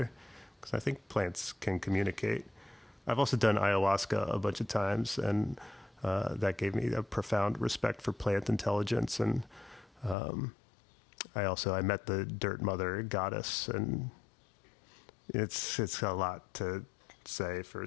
Because I think plants can communicate. I've also done ayahuasca a bunch of times, and that gave me a profound respect for plant intelligence. And I met the dirt mother goddess, and it's a lot to say for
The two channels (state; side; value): drops out; right; at 10.2 s